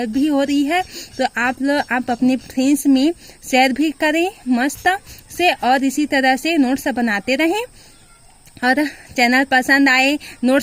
भी हो रही है तो आप अपने फ्रेंड्स में शेयर भी करें मस्त से, और इसी तरह से नोट्स बनाते रहें। और चैनल पसंद आए,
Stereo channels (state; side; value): identical; both; correlation 1.00